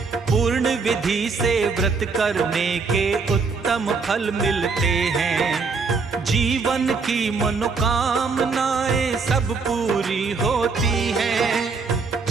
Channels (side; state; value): left; quieter; 4.7 dB